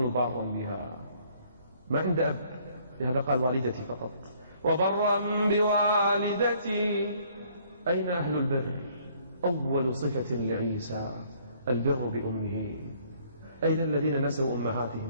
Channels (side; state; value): both; inverted; correlation -0.62